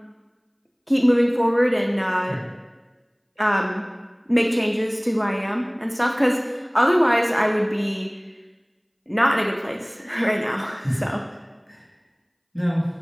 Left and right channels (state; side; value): identical; both; correlation 1.00